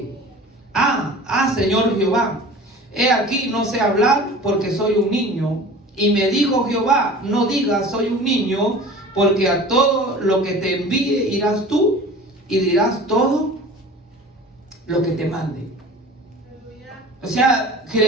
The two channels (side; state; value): both; normal; correlation 0.41